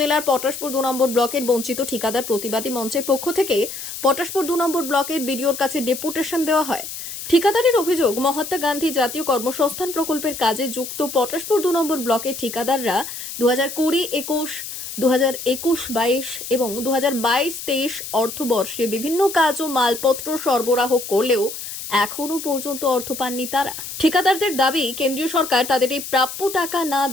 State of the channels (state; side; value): noise; left; hiss, 9 dB below the sound